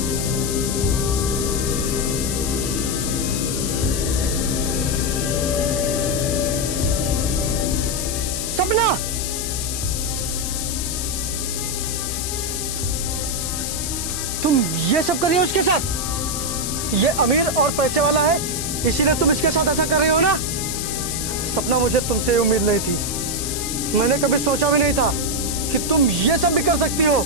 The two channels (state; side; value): noise; left; hiss, 3 dB below the sound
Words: सपना, तुम ये सब कर रही हो उसके साथ? ये अमीर और पैसे वाला है, इसीलिए तुम इसके साथ ऐसा कर रही हो ना? सपना, मुझे तुमसे उम्मीद नहीं थी। मैंने कभी सोचा भी नहीं था कि तुम ये सब भी कर सकती हो।